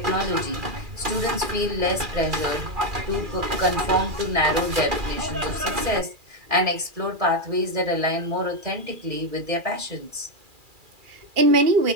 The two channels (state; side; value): late; left; 2.4 ms